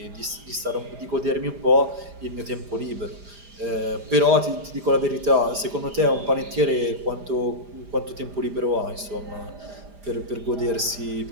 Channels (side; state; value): left; late; 4.9 ms